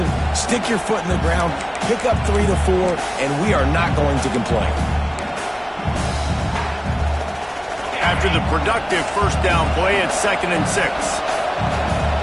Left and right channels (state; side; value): identical; both; correlation 1.00